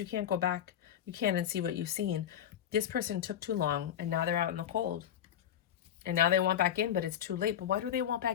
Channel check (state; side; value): quieter; right; 10.0 dB